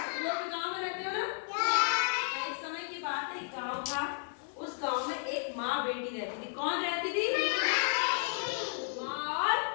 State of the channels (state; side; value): silent; right; digital silence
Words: लोग गांव में रहते हो ना? एक समय की बात है, एक गांव था। उस गांव में एक माँ बेटी रहती थी। कौन रहती थी? माँ और